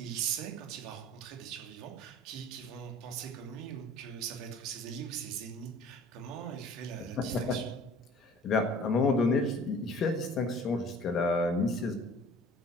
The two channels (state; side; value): normal; both; correlation 0.48